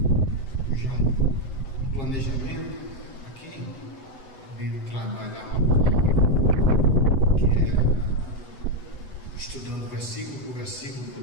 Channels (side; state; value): right; late; 7.9 ms